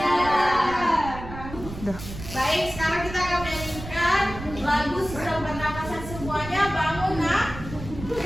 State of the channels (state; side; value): noise; right; rumble, 11 dB below the sound